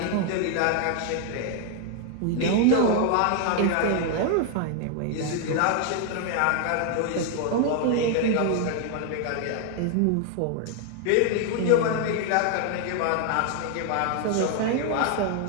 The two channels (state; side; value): different; both; correlation 0.00